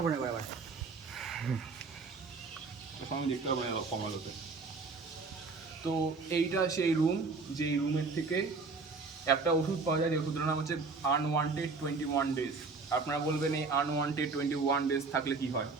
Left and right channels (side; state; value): left; quieter; 4.2 dB